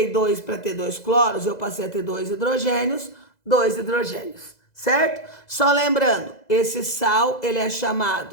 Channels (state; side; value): late; right; 2.0 ms